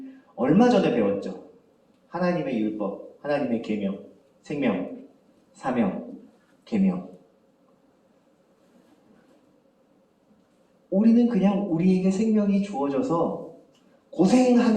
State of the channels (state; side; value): identical; both; correlation 1.00